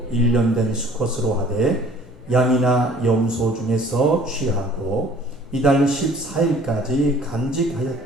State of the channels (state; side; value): noise; left; hum, 27 dB below the sound